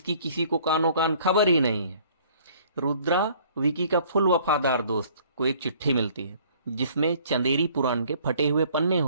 किसी को कानो कान खबर ही नहीं है। रुद्रा विकी का फुल वफादार दोस्त को एक चिट्ठी मिलती है जिसमें चंदेरी पुराण के फटे हुए पन्ने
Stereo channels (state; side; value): inverted; both; correlation -0.56